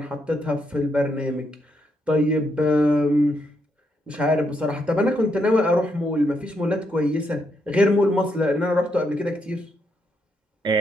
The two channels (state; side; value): normal; both; correlation 0.78